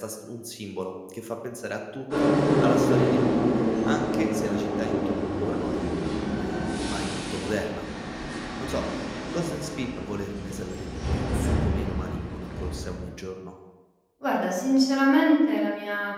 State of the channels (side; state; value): both; identical; correlation 1.00